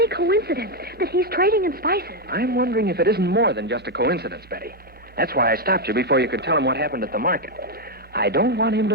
coincidence that he's trading in spices? I'm wondering if it isn't more than just a coincidence, Betty. That's why I stopped you before you could tell him what happened at the market. I don't want him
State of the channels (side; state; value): both; normal; correlation 0.03